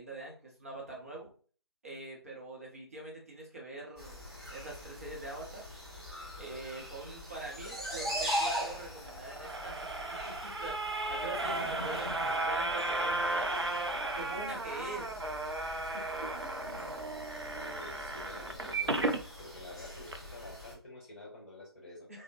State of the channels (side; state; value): both; normal; correlation 0.35